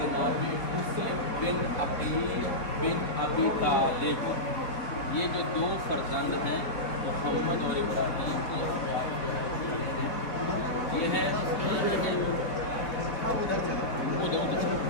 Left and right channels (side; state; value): right; late; 4.2 ms